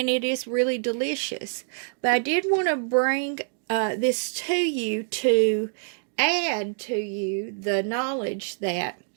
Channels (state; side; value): silent; left; digital silence